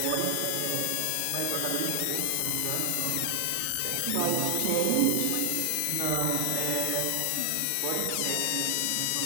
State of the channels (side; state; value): both; different; correlation 0.00